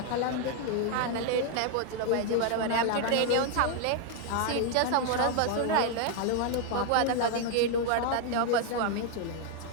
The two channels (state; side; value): different; both; correlation 0.01